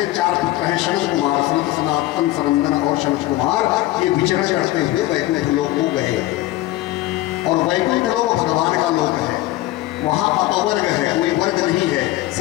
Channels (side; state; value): right; quieter; 16.5 dB